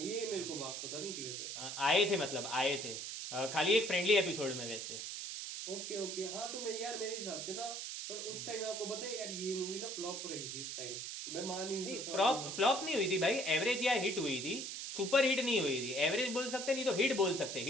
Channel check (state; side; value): noise; right; hiss, 5 dB below the sound